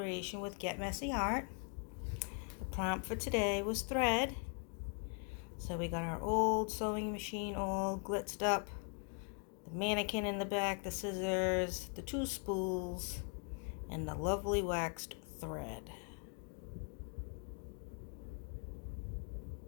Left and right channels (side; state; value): right; quieter; 38.6 dB